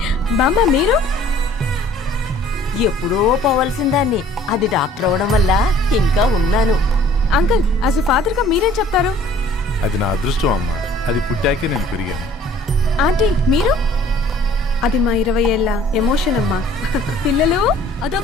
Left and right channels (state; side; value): normal; both; correlation 0.53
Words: బామ్మ, మీరు ఎప్పుడో పోవలసిందాన్ని, అది డాక్టర్ అవడం వల్ల ఇంకా ఉన్నాను. అంకుల్, యాజ్ ఎ ఫాదర్ గా మీరేం చెప్తారు? అది నా అదృష్టం అమ్మా, అది పుట్టాకే నేను పెరిగాను. ఆంటీ, మీరు? అది మా 20 ఏళ్ల ఎమోషన్ అమ్మా. పిల్లలు,